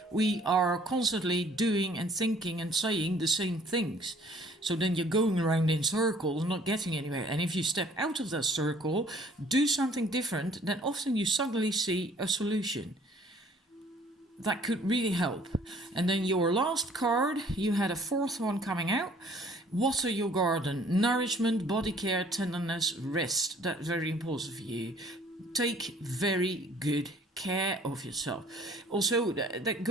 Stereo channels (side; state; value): both; normal; correlation 0.56